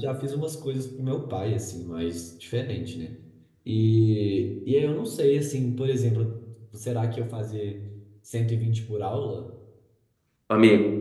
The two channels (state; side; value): identical; both; correlation 1.00